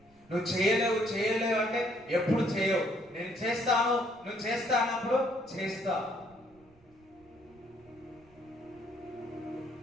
నువ్వు చేయలేవు అంటే ఎప్పుడు చేయవు. నేను చేస్తాను, నువ్వు చేస్తానప్పుడు చేస్తావు.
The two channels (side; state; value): right; noise; rumble, 29 dB below the sound